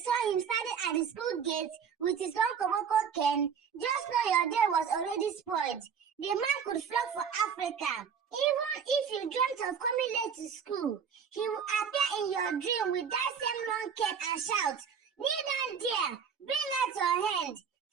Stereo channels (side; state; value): left; quieter; 7.1 dB